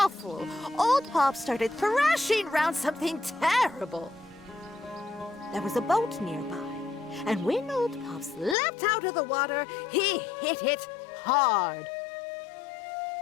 old Pops started thrashing around something terrible. There was a boat nearby, and when old Pops leapt out of the water, he hit it hard.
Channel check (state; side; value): drops out; right; at 8.6 s